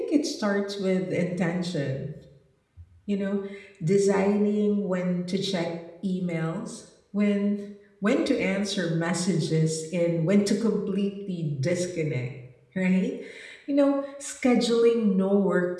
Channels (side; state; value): both; identical; correlation 1.00